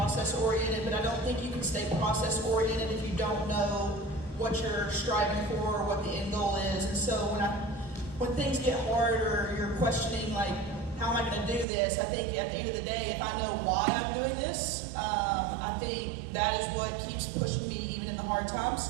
but I don't think you can stay process-oriented if you don't know what you're striving for or what the end goal is. And so when things get hard or you're questioning, like, how am I going to do this? I think at the end of the day, if I know why I'm doing this, I think that is what keeps pushing me even in the hard times.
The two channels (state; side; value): drops out; left; at 11.7 s